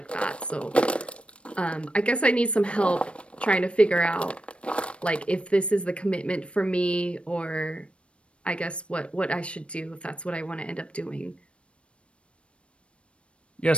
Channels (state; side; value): late; right; 0.060 ms